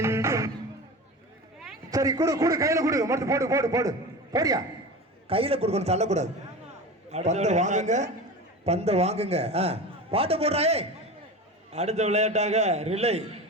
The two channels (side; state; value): both; normal; correlation 0.30